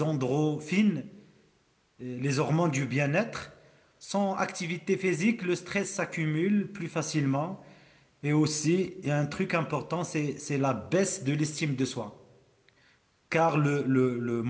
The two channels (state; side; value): identical; both; correlation 1.00